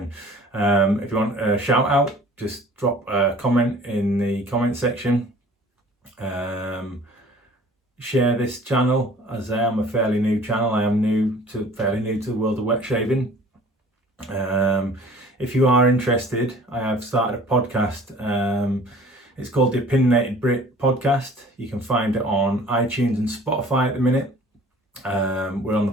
If you want a shout out, just drop a comment in the comment section. Share this channel, as I am a fairly new channel. I am fairly new to the world of wet shaving. If you are interested, I have started a podcast. It's called the Opinionated Brit Podcast. You can find it on iTunes and Spotify at the minute. We're on the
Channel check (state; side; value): normal; both; correlation 0.49